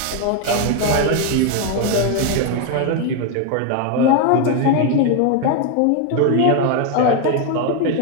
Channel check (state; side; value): different; both; correlation 0.01